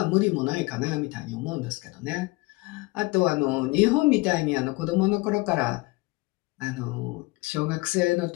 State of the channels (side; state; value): right; quieter; 23.6 dB